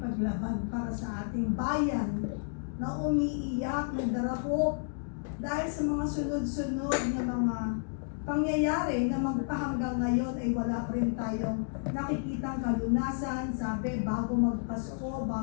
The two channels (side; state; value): right; silent; digital silence